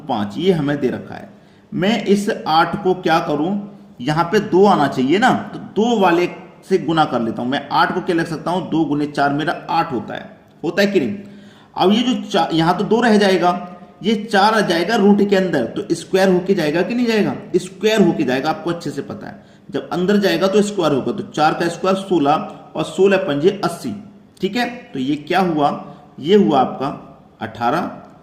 5, ये हमें दे रखा है। मैं इस 8 को क्या करूं, यहां पे 2 आना चाहिए ना, तो 2 वाले से गुना कर लेता हूं। मैं 8 को क्या लिख सकता हूं? 2 गुने 4 मेरा 8 होता है कि नहीं? अब ये जो यहां तो 2 रह जाएगा, ये 4 आ जाएगा रूट के अंदर, तो स्क्वायर होके जाएगा कि नहीं जाएगा? स्क्वायर होके जाएगा, आपको अच्छे से पता है। जब अंदर जाएगा तो स्क्वायर होगा। तो 4 का स्क्वायर 16 और 16 पंजे 80। ठीक है, तो ये क्या हुआ? ये हुआ आपका 18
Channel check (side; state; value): both; identical; correlation 1.00